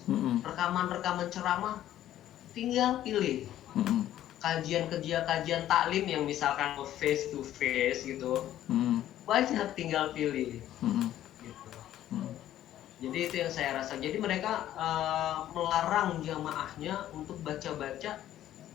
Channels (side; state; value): right; quieter; 12.5 dB